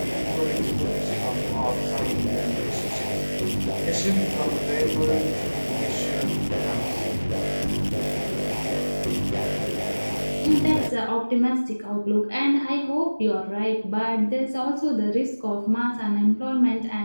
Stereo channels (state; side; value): inverted; both; correlation -1.00